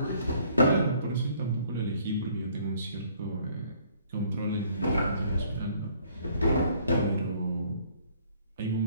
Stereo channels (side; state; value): both; inverted; correlation -0.60